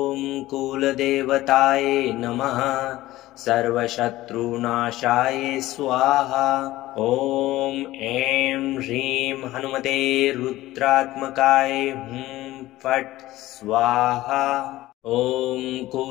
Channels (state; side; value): quieter; right; 16.6 dB